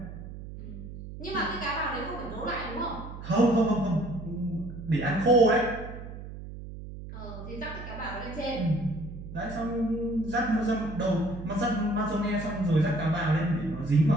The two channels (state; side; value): noise; right; hum, 11 dB below the sound